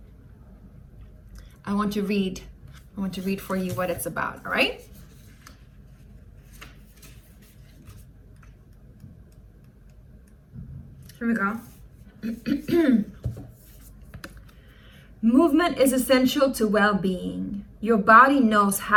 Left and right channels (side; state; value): both; identical; correlation 1.00